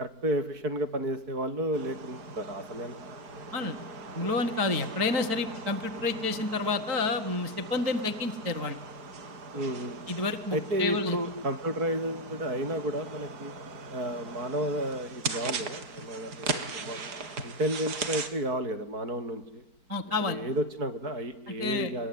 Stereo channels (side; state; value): left; late; 4.5 ms